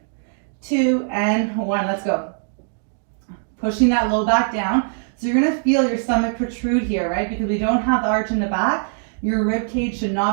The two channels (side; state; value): left; silent; digital silence